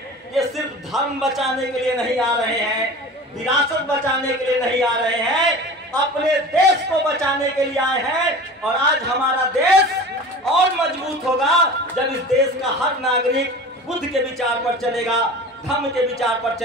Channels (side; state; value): both; normal; correlation 0.37